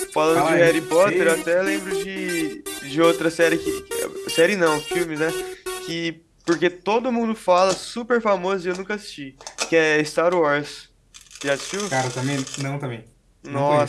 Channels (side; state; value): both; identical; correlation 1.00